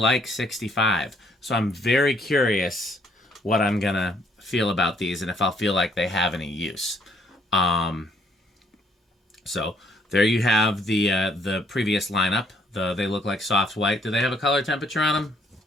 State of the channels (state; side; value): normal; both; correlation 0.66